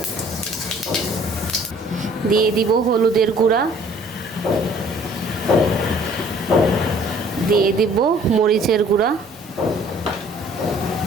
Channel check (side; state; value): both; normal; correlation 0.55